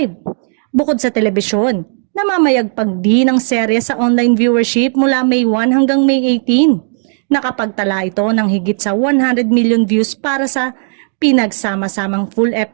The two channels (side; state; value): left; silent; 55 dB below the other